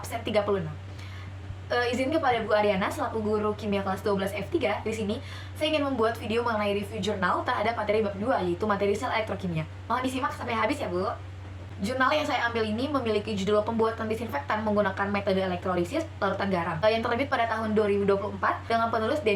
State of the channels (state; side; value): identical; both; correlation 1.00